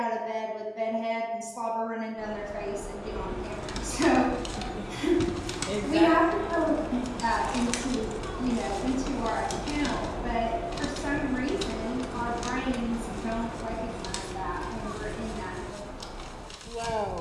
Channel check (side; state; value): both; identical; correlation 1.00